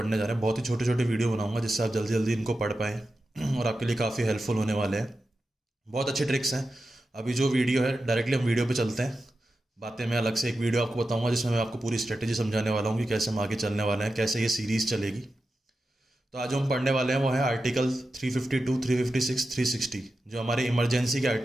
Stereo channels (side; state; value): both; normal; correlation 0.91